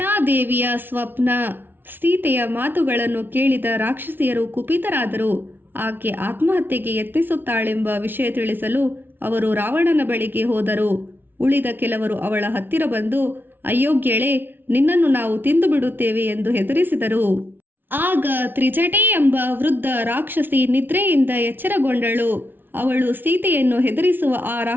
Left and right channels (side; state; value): left; late; 0.096 ms